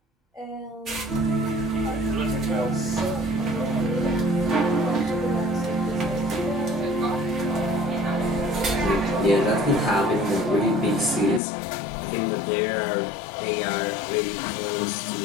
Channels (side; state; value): right; drops out; at 11.4 s